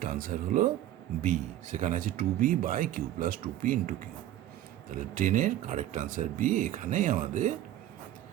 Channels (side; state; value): left; quieter; 12.8 dB